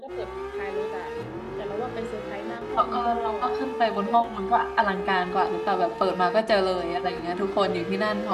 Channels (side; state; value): both; identical; correlation 1.00